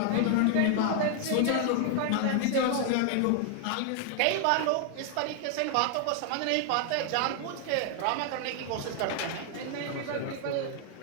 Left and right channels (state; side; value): different; both; correlation 0.00